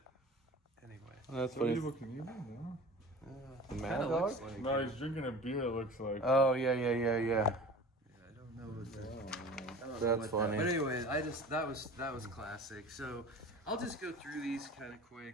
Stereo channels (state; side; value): normal; both; correlation 0.39